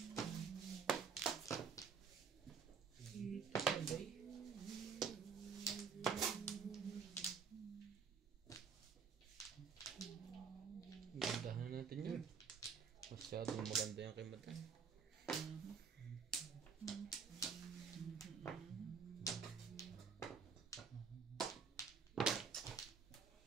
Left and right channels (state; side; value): quieter; left; 6.0 dB